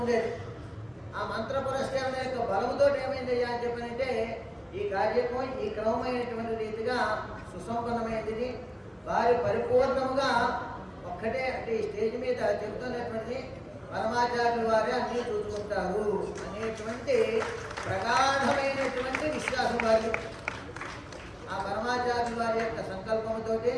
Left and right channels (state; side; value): identical; both; correlation 1.00